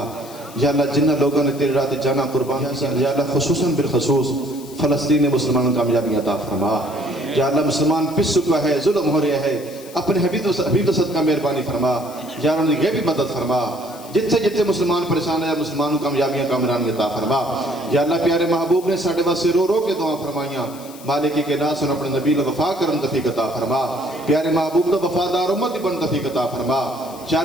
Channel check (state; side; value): noise; left; hiss, 19 dB below the sound